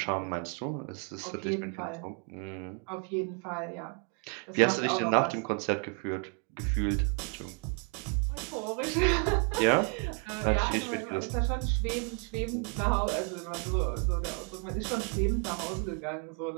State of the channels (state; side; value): quieter; left; 36.4 dB